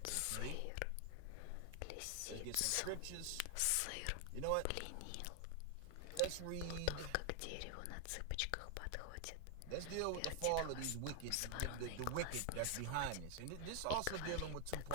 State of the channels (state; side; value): different; both; correlation 0.00